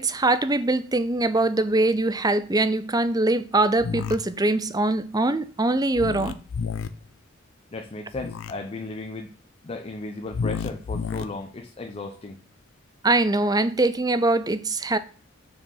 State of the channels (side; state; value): both; normal; correlation 0.53